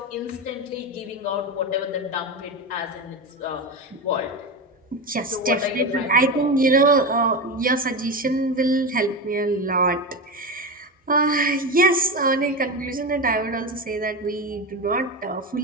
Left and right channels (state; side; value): normal; both; correlation 0.19